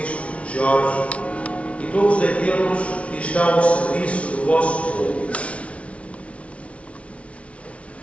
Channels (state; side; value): late; right; 0.063 ms